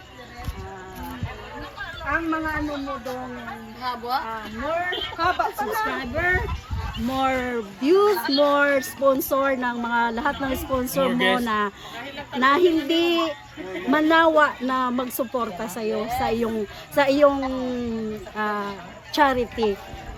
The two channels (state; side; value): identical; both; correlation 1.00